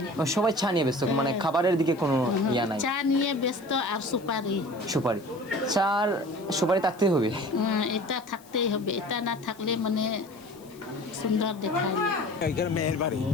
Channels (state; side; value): noise; left; hiss, 25 dB below the sound